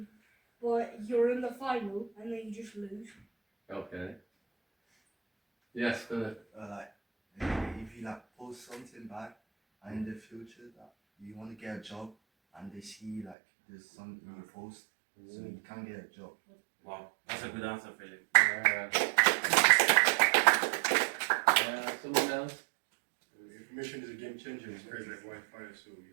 but you're in the final and then you just lose. Okay. Yes, good. If you post something back and in the future that you want to get a job and they see there's something you post, so you can't get a job. Wow, that's a good answer, Philip. Someone else? Information is a game changer. It's crazy like Wi-Fi, so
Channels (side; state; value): left; drops out; at 13.4 s